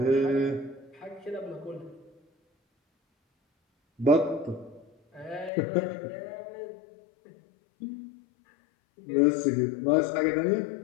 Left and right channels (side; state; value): right; drops out; at 5.5 s